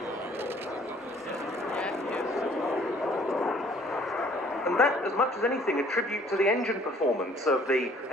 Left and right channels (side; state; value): both; normal; correlation 0.57